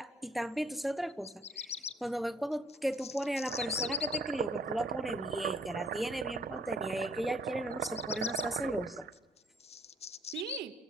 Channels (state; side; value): normal; both; correlation 0.63